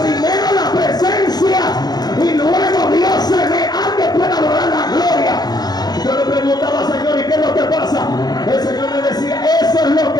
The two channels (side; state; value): right; late; 0.19 ms